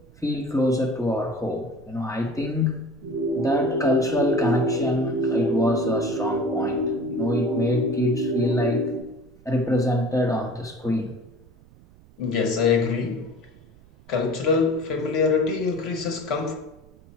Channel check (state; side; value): noise; right; rumble, 25 dB below the sound